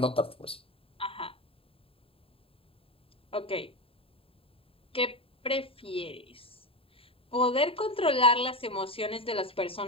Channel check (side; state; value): right; late; 0.27 ms